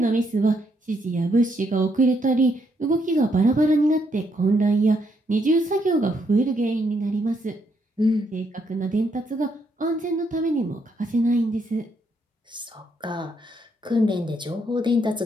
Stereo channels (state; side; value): normal; both; correlation 0.75